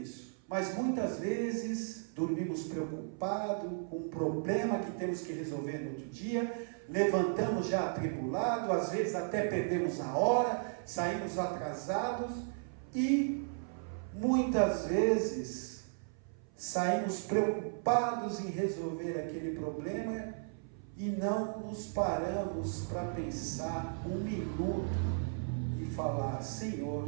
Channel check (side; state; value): left; silent; 54 dB below the other